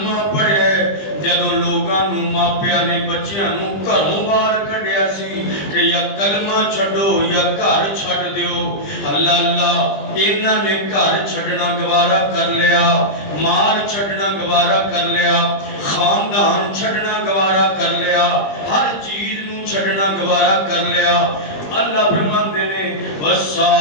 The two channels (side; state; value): right; late; 20 ms